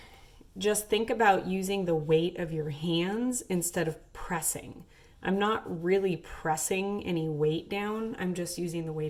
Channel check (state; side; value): identical; both; correlation 1.00